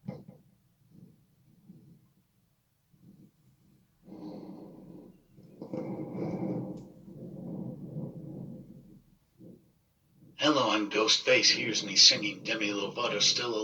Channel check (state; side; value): identical; both; correlation 1.00